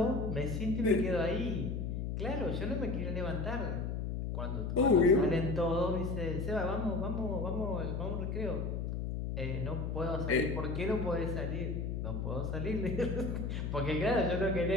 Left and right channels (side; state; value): left; noise; hum, 2 dB below the sound